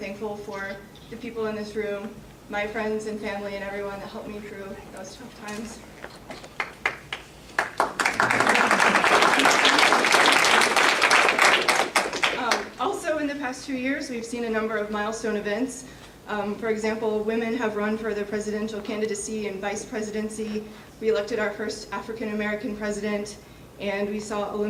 for the people in this room, my friends and family, and everyone that helped me through those tough times. Also, in the past 2 years, we've seen a number of milestone events. For example, women have run for the presidential candidacy and vice presidency. We elected our first African-American president, and we saw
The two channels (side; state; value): both; identical; correlation 1.00